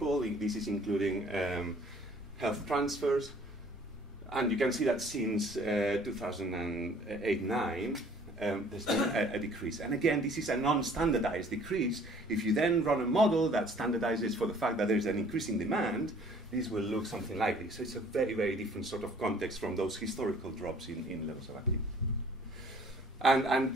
This is including health transfers. And you can see that since 2008-9, there's been a decrease. And again, this is a non-standardized decrease. If you then run a model that standardizes for the fact that there's an increase in demand, this will look something like this. So it's a very, very different sort of context from those historical drops in levels of activity. And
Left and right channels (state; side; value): normal; both; correlation 0.55